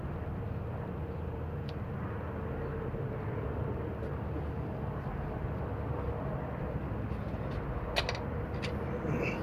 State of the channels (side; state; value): both; identical; correlation 1.00